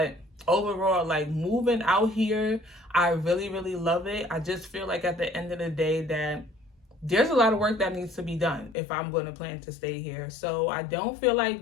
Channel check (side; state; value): right; drops out; at 8.8 s